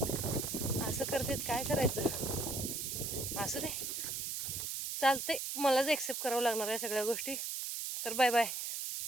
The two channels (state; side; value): noise; right; hiss, 3 dB below the sound